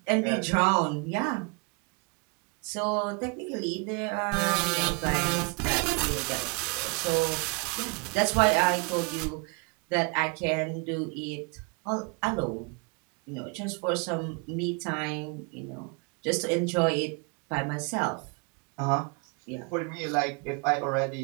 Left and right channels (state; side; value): quieter; left; 32.9 dB